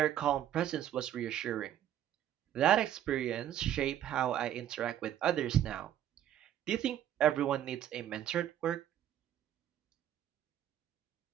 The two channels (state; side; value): quieter; left; 11.2 dB